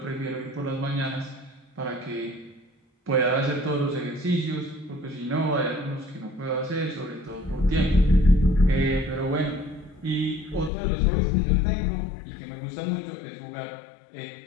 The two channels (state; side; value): drops out; right; at 10.7 s